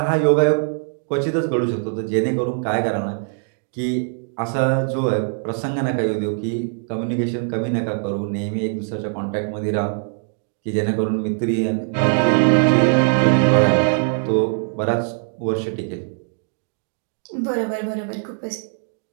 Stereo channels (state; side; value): silent; left; digital silence